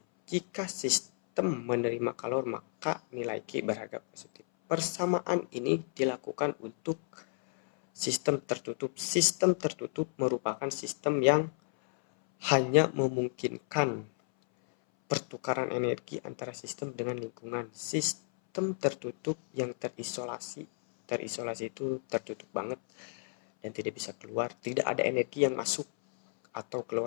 Jika sistem menerima kalor, maka nilai Q berharga positif. Persamaan ini dilakukan untuk sistem tertutup. Sistem tertutup merupakan sistem yang hanya memungkinkan pertukaran energi antara sistem dengan lingkungan. Sistem tertutup yang terisolasi itu tertutup banget dan tidak bisa keluar. Tidak ada energi yang masuk atau keluar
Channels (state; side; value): silent; right; 56 dB below the other